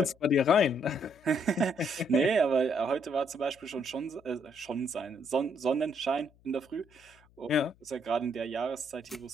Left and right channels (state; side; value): noise; left; hum, 30 dB below the sound